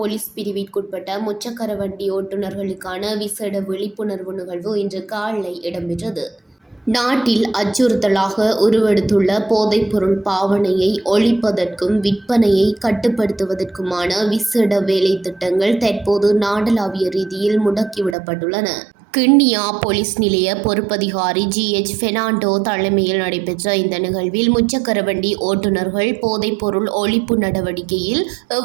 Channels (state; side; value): drops out; left; at 18.2 s